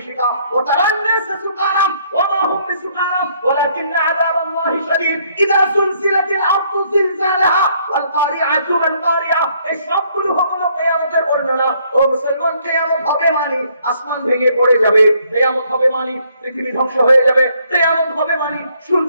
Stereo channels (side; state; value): both; inverted; correlation -0.67